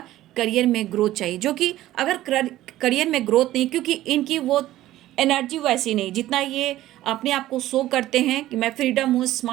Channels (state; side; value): quieter; left; 14.8 dB